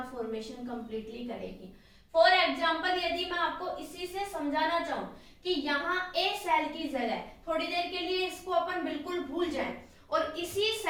फॉर्मेशन कंप्लीटली करेगी। फॉर एग्जाम्पल यदि मैं आपको इसी से समझाना चाहूं कि यहाँ ए सेल की जगह, थोड़ी देर के लिए इसको अपन बिल्कुल भूल जाएं और इसी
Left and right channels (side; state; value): both; identical; correlation 1.00